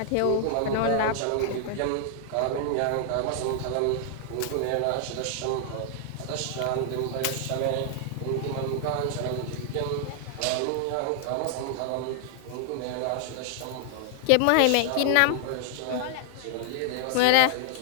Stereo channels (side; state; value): both; different; correlation -0.01